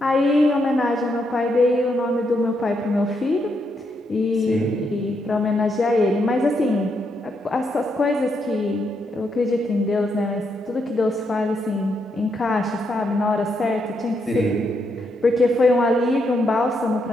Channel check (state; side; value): normal; both; correlation 0.79